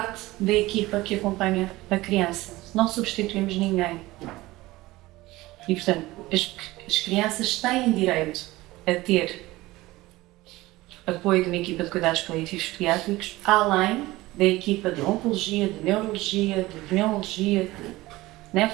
da equipa que acompanha a criança, não substituímos ninguém. E portanto, as crianças têm direito a ter apoio de uma equipa de cuidados paliativos pediátricos, além da equipa de oncologia, de neurologia, de pneumologia, de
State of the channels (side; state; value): left; quieter; 19.0 dB